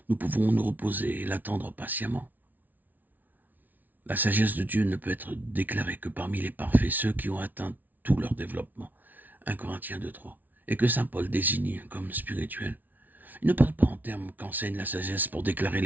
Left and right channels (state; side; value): late; left; 0.081 ms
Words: nous pouvons nous reposer et l'attendre patiemment. La sagesse de Dieu ne peut être déclarée que parmi les parfaits, ceux qui ont atteint tout leur développement. 1 Corinthiens 2:3. Et que saint Paul désigne comme spirituel. Il ne parle pas en termes qu'enseigne la sagesse pour déclarer